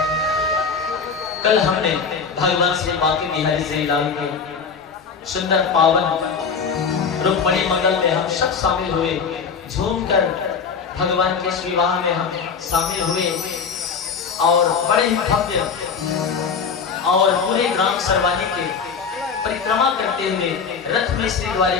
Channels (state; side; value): quieter; right; 5.8 dB